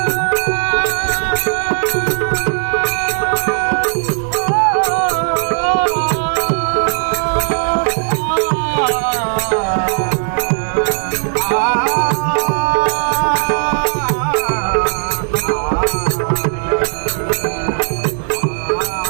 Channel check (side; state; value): left; silent; 61 dB below the other